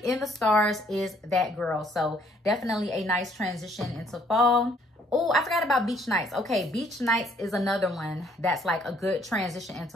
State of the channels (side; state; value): both; normal; correlation 0.64